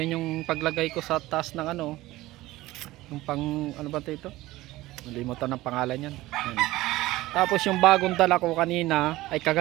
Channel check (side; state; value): left; quieter; 17.8 dB